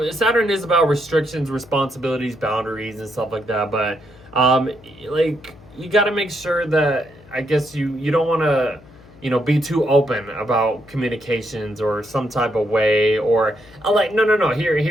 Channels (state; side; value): noise; left; hum, 23 dB below the sound